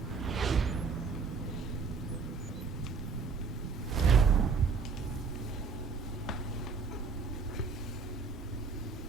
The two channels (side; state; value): left; quieter; 5.0 dB